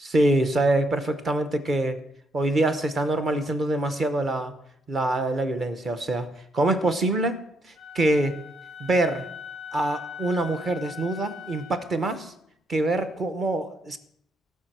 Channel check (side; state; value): both; normal; correlation 0.75